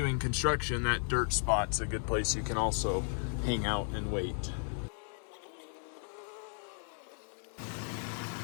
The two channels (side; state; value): right; silent; 55 dB below the other